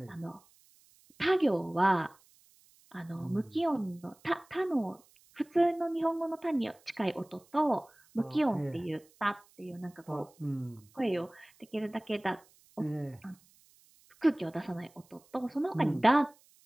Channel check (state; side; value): noise; right; hiss, 30 dB below the sound